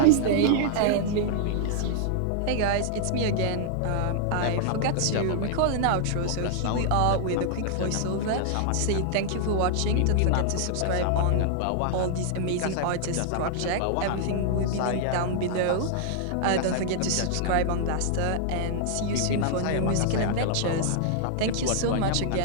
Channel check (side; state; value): both; different; correlation -0.01